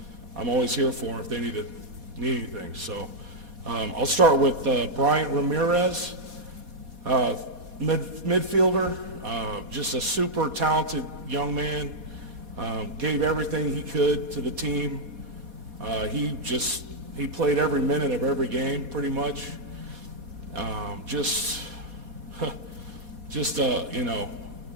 I'm always here for them if they need anything. So I'll start with Bryant Ramirez, midfielder, just a super talented young man, gave everything he could to the team. He played every minute of every game pretty much.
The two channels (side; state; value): left; late; 4.2 ms